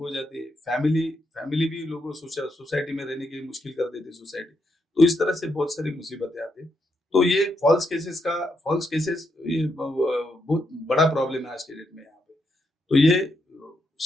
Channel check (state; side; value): normal; both; correlation 0.80